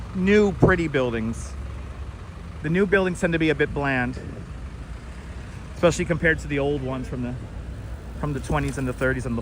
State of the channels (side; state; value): both; identical; correlation 1.00